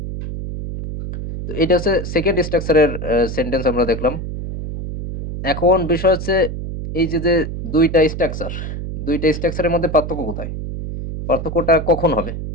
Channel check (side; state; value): right; noise; hum, 6 dB below the sound